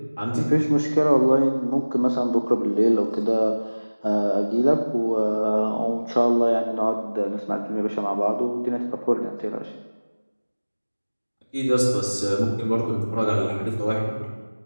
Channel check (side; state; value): both; inverted; correlation -1.00